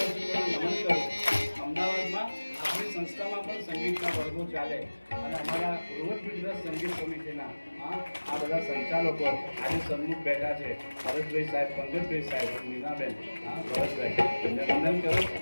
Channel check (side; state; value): both; inverted; correlation -1.00